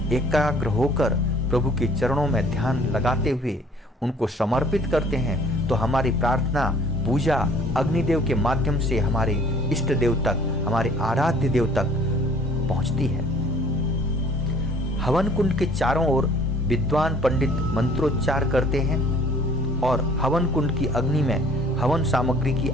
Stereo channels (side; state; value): both; normal; correlation 0.54